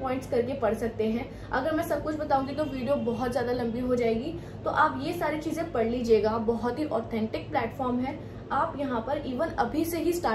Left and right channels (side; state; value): both; identical; correlation 1.00